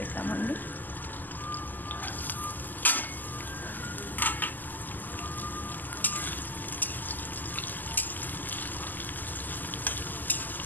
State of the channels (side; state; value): right; late; 0.086 ms